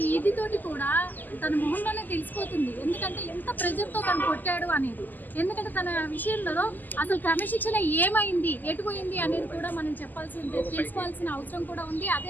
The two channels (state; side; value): late; right; 0.086 ms